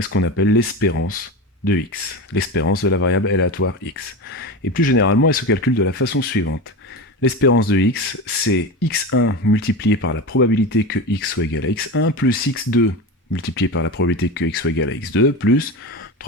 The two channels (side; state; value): both; normal; correlation 0.24